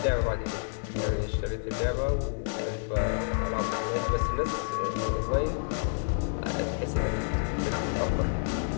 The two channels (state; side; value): silent; right; digital silence